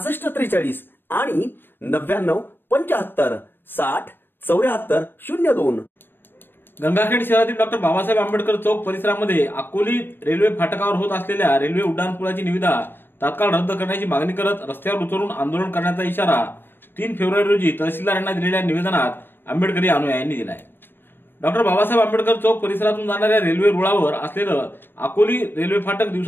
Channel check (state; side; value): late; right; 0.099 ms